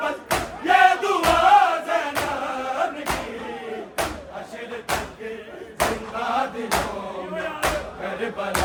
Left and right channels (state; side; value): identical; both; correlation 1.00